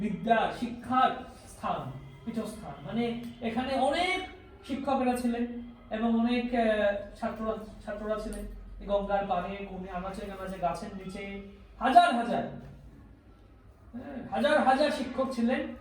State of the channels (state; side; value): identical; both; correlation 1.00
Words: বিদ্যা শিক্ষার স্থান, পীঠস্থান, মানে এখানে অনেক শিক্ষকেরা ছিলেন এবং অনেক ছাত্ররা ছিলেন। গঙ্গার পাড়ে, কোণে, আনাচে কানাচে, গাছের নিচে হাজার হাজার হাজার হাজার শিক্ষক ছিলেন